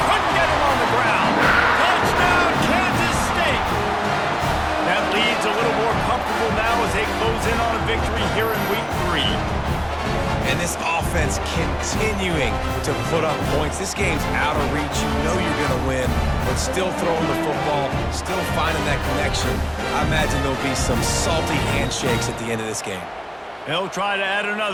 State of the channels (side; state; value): both; identical; correlation 1.00